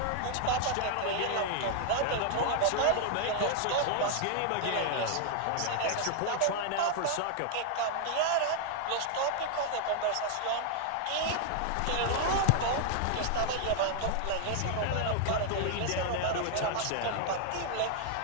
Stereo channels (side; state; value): both; different; correlation 0.00